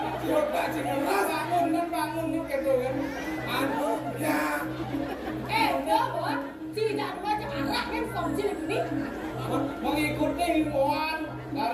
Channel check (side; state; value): both; identical; correlation 1.00